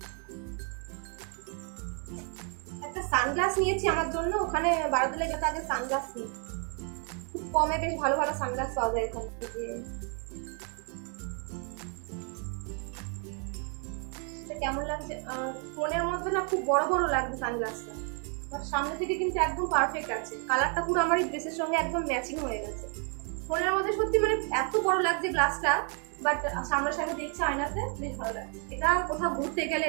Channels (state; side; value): quieter; left; 40.0 dB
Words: একটা সানগ্লাস নিয়েছি আমার জন্য। ওখানে বারোদোলে যত আগে সানগ্লাস নিই, খুব কমে বেশ ভালো ভালো সানগ্লাস পাওয়া যায় এখান থেকে। কেমন লাগছে ফোনের মধ্যে না, খুব বড় বড় লাগছে সানগ্লাসটা। আর সামনে থেকে কিন্তু একদম পারফেক্ট আছে, কালারটা পুরো আমার এই ড্রেসের সঙ্গে একদম ম্যাচিং হয়ে গেছে। ফোনের মধ্যে সত্যি মানে এত বড় লাগছে গ্লাসটা, বাট সামনাসামনি দেখছে আয়নাতে বেশ ভালো লাগছে। এটা কোথাও ঘুরতে গেলে